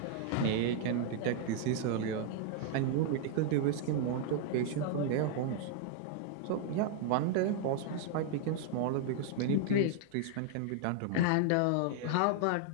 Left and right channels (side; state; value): both; different; correlation 0.00